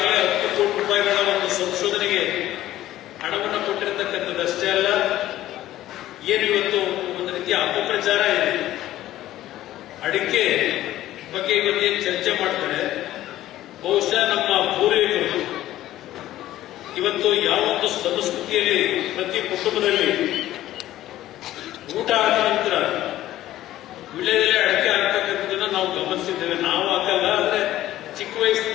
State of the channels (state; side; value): quieter; right; 14.2 dB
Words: 10 ಕೋಟಿ ರೂಪಾಯಿಗಳ ಒಂದು ಸಂಶೋಧನೆಗೆ ಹಣವನ್ನು ಕೊಟ್ಟಿರತಕ್ಕಂಥದ್ದಷ್ಟೇ ಅಲ್ಲ, ಏನು ಇವತ್ತು ಒಂದು ರೀತಿಯ ಅಪಪ್ರಚಾರ ಇದೆ. ಅಡಿಕೆ ಬಗ್ಗೆ ಇವತ್ತೇ ಚರ್ಚೆ ಮಾಡ್ತಾರೆ. ಬಹುಶಃ ನಮ್ಮ ಪೂರ್ವಿಕರು ಇವತ್ತು ಯಾವೊಂದು ಸಂಸ್ಕೃತಿಯಲ್ಲಿ ಪ್ರತಿ ಕುಟುಂಬದಲ್ಲಿ ಊಟ ಆದ ನಂತರ ವಿಳೆದೆಲೆ ಅಡಿಕೆ ಹಾಕ್ತಕ್ಕಂಥದ್ದನ್ನ ನಾವು ಗಮನಿಸಿದ್ದೇವೆ. ನಾವು ಹಾಕಲ್ಲ, ಆದ್ರೆ ಚಿಕ್ಕ